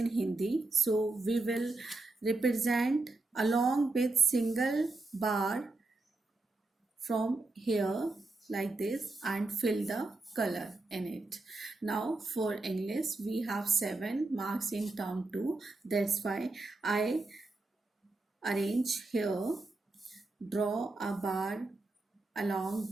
Hindi, so we will represent along with single bar from here like this and fill the color in it. Now for English we have 7 marks in term 2, that's why I arrange here, draw a bar along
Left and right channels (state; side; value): quieter; left; 3.1 dB